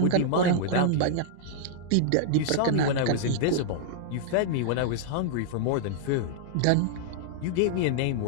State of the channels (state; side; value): different; both; correlation -0.01